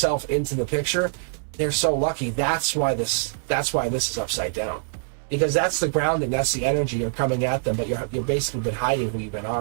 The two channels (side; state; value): left; silent; 62 dB below the other